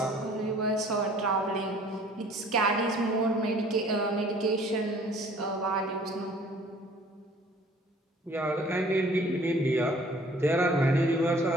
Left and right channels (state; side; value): normal; both; correlation 0.53